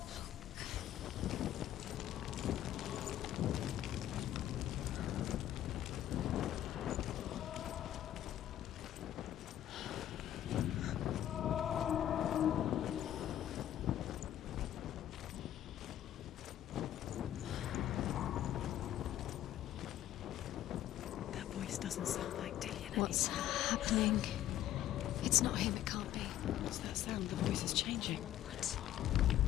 That voice doesn't sound like Dillian What's anymore. happening? It's not him, it can't be. What's that sound? The voice is changing. What?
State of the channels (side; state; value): right; quieter; 12.2 dB